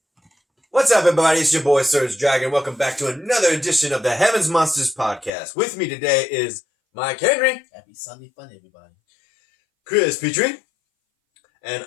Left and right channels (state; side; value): drops out; right; at 5.3 s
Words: What's up, everybody? It's your boy, Surge Dragon. Welcome back to another edition of the Heavens Monsters Podcast. With me today is Mike Henry. Happy Sunday fun, everybody. Chris Petrie. And